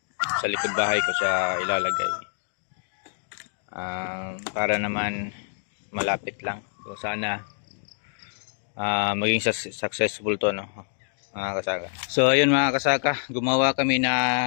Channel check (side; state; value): right; silent; digital silence